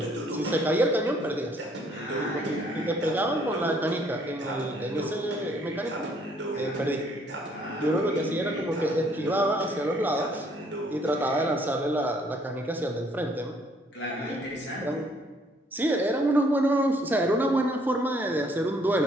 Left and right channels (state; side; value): normal; both; correlation 0.64